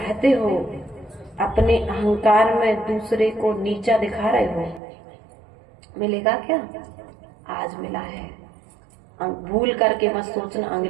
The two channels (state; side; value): drops out; left; at 4.8 s